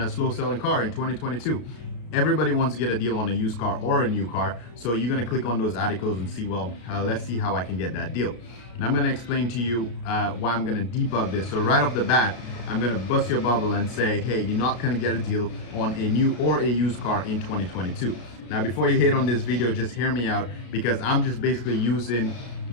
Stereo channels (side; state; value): right; late; 33 ms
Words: slow selling car in 2022. Everybody wants to get a deal on a used car or a new car, so you're going to click on those articles and see, well, let's see how I can get that deal. And I'm going to explain to you why I'm going to debug this. So right off the bat, I'm going to bust your bubble and say, hey, you're not going to get a deal on a new or a used car in 2022. Now, before you hate on this video, just hear me out, because I'm just basically using